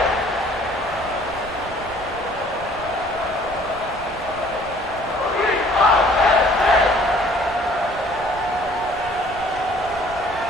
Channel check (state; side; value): noise; right; rumble, 17 dB below the sound